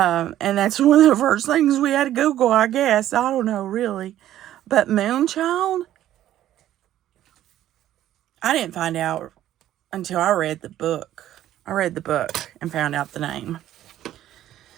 that's one of the first things we had to Google, I guess. I don't know, really. But Moonchild? I didn't find out until I read the book. I read the book and found out the name.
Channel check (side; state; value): left; quieter; 12.6 dB